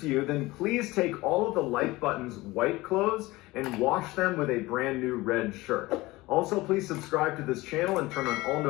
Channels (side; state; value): right; quieter; 20.2 dB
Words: to you, then please take all of the like button's white clothes and wash them with a brand new red shirt. Also, please subscribe to this channel and turn on all